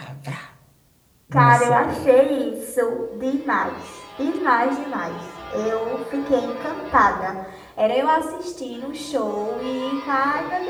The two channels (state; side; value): identical; both; correlation 1.00